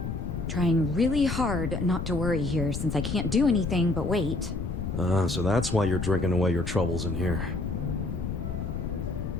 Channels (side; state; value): left; noise; rumble, 4 dB below the sound